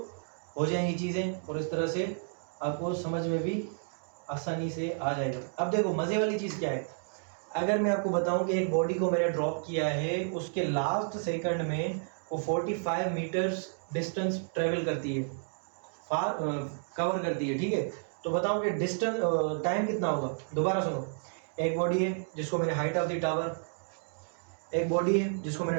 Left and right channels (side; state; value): left; silent; digital silence